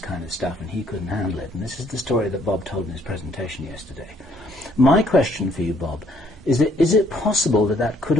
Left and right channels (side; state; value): both; normal; correlation 0.65